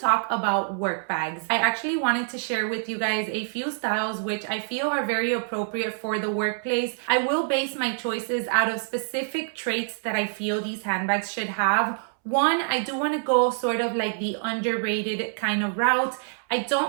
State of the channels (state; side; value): silent; left; 60 dB below the other